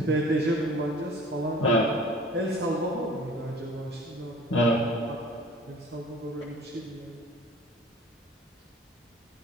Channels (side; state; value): both; normal; correlation 0.47